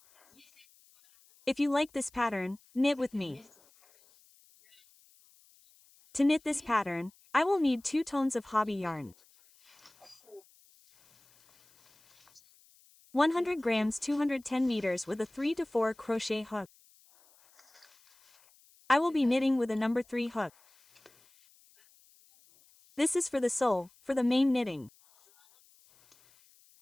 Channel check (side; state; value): left; noise; hiss, 30 dB below the sound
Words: If you like this pattern, knit with me. To knit this pattern, I will need 2 tones of hobby yarn, 100 grams 210 meters with a 3 to 4 crochet hook. I will be knitting with a number 3 hook. This is for the sole, for the main knitting.